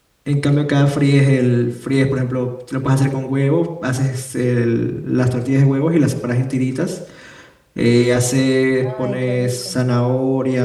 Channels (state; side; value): identical; both; correlation 1.00